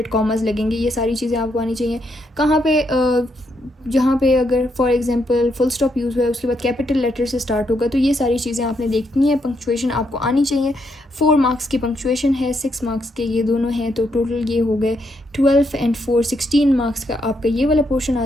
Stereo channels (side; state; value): both; normal; correlation 0.78